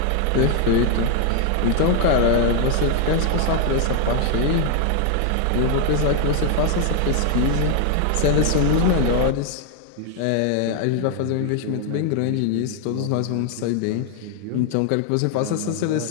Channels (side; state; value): both; different; correlation 0.00